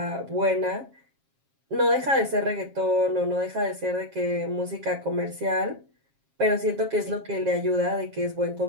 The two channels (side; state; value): left; late; 7.4 ms